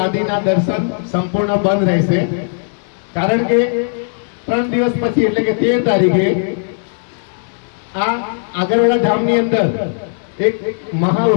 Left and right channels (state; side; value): silent; right; digital silence